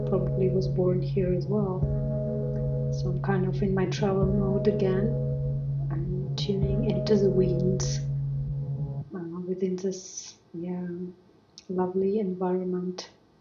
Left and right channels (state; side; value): identical; both; correlation 1.00